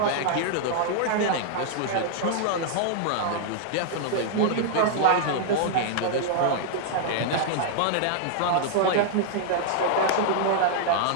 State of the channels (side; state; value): both; different; correlation -0.01